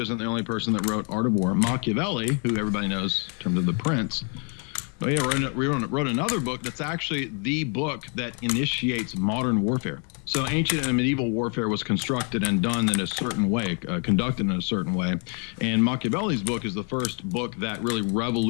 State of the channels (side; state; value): right; quieter; 38.9 dB